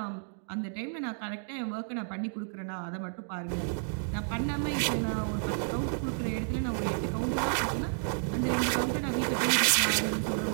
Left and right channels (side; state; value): left; silent; digital silence